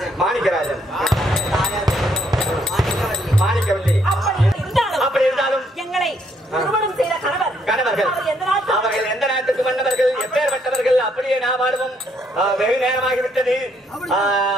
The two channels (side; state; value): both; normal; correlation 0.71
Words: மாணிக்கராஜன். தாயார் மாணிக்கவல்லி. மாணிக்கவல்லி. அப்படி இருந்தாலும் எங்களை திருமணம் செய்த கணவர்கள் அவர்கள் எந்த நாட்டுக்கு மன்னவர்கள், எப்பேற்பட்டவர்கள்? அப்படியே நாம் வாடுவோம். வெகு நேரமாகிவிட்டது.